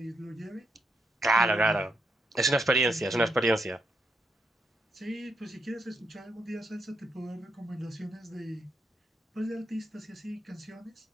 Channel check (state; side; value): normal; both; correlation 0.80